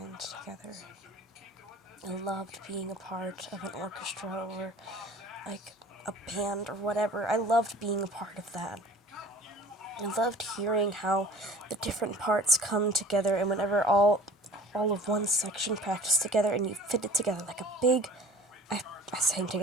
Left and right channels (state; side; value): normal; both; correlation 0.45